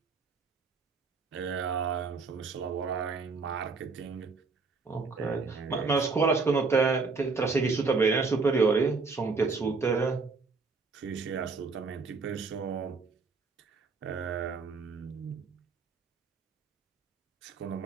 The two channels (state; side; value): quieter; left; 4.4 dB